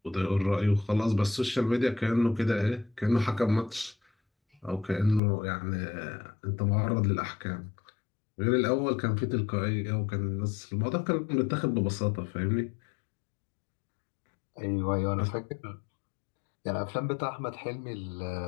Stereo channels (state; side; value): drops out; right; at 5.2 s